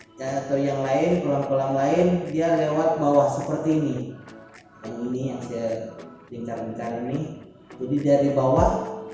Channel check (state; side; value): identical; both; correlation 1.00